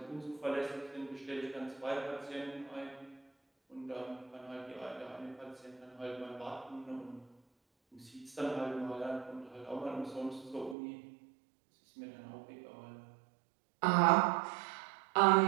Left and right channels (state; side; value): drops out; left; at 10.8 s